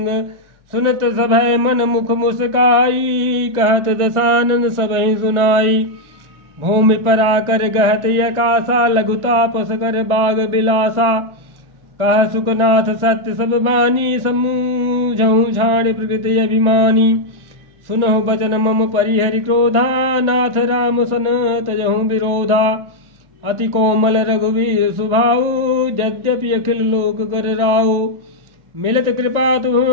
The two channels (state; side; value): late; left; 1.4 ms